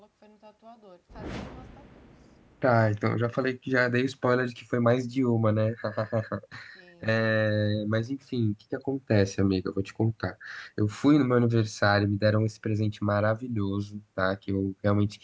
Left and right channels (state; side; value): identical; both; correlation 1.00